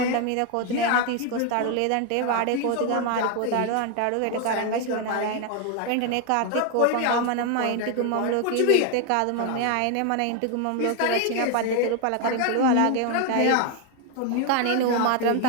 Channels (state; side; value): different; both; correlation 0.01